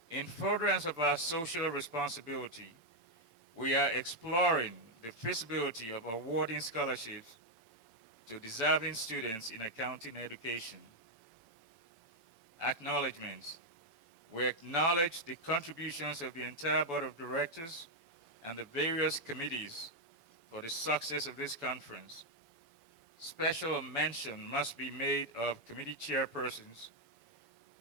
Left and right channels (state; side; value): late; left; 7.0 ms